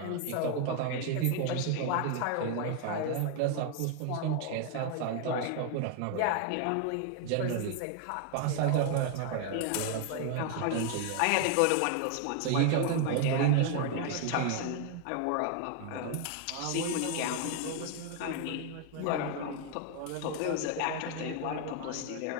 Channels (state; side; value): different; both; correlation 0.00